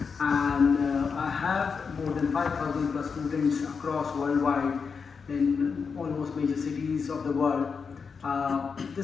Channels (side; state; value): right; quieter; 5.6 dB